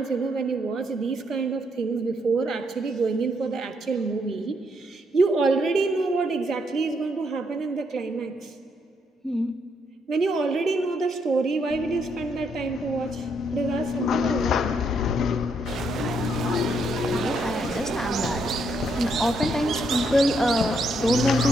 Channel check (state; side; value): normal; both; correlation 0.75